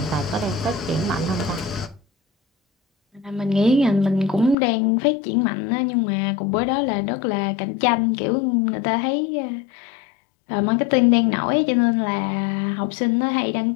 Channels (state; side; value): drops out; right; at 4.5 s